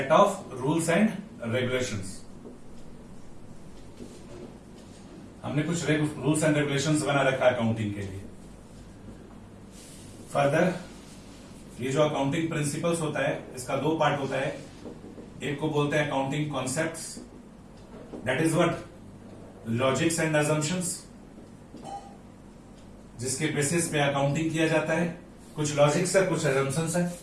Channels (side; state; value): both; identical; correlation 1.00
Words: of rules and regulations. हमने कुछ रूल्स एंड रेगुलेशंस बना रखा है अकाउंटिंग के लिए। फर्दर, ये जो अकाउंटिंग प्रिंसिपल्स होता है, इसका दो पार्ट होता है। एक को बोलते हैं accounting concepts, that is what? Logics and assumptions, जिसके बेसिस पे अकाउंटिंग किया जाता है। कुछ लॉजिक्स है, कुछ अजम्पशंस है,